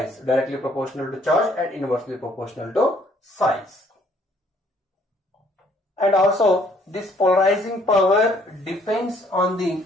directly proportional to charge and inversely proportional to size. And also this polarizing power depends on the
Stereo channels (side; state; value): both; normal; correlation 0.63